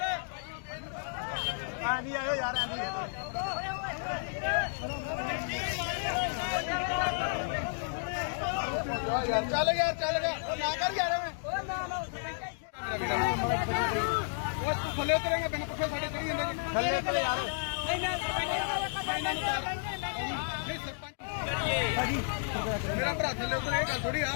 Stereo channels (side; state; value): right; silent; digital silence